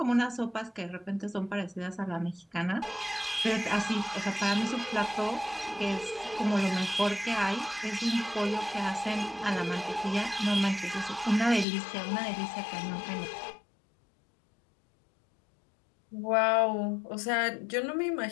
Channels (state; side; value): drops out; right; at 11.7 s